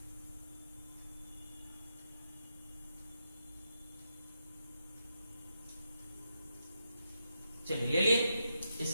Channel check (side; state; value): both; inverted; correlation -0.84